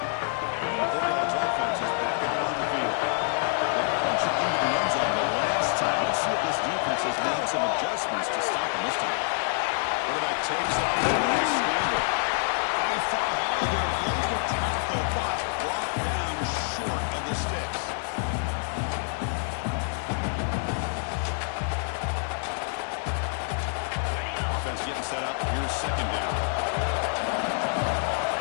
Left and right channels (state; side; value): silent; right; 60 dB below the other